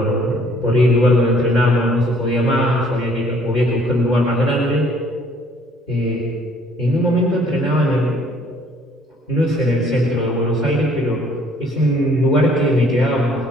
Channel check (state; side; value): normal; both; correlation 0.60